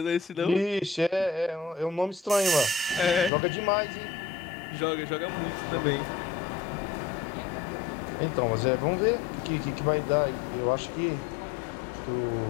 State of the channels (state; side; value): drops out; right; at 3.3 s